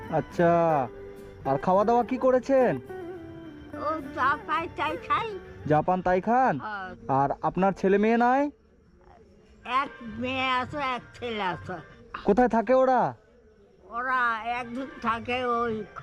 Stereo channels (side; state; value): both; identical; correlation 1.00